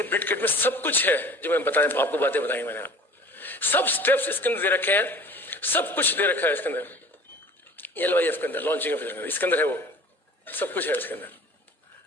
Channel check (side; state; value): both; normal; correlation 0.44